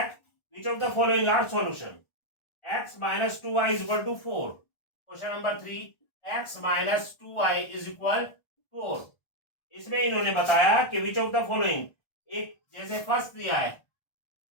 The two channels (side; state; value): right; late; 1.4 ms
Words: which of the following are solution. x minus 2y is equal to 4। Question number 3, x minus 2y is equal 4। इसमें इन्होंने बताया कि विच ऑफ द फॉलोइंग, एक जैसे फर्स्ट दिया है